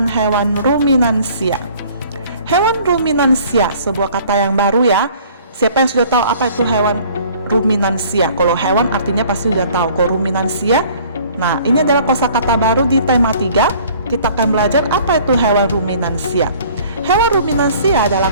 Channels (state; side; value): inverted; both; correlation -0.53